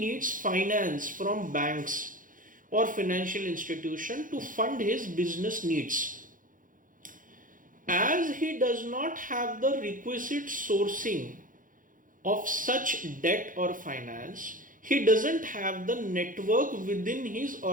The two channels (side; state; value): left; late; 0.39 ms